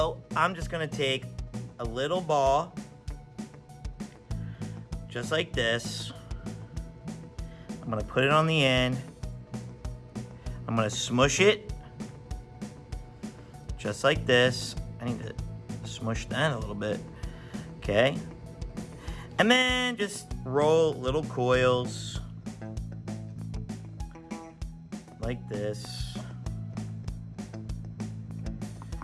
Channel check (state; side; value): identical; both; correlation 1.00